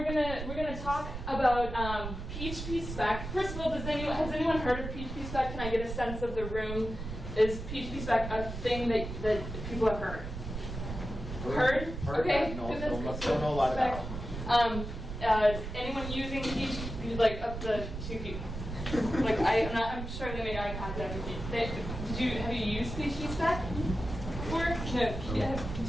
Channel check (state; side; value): noise; right; rumble, 7 dB below the sound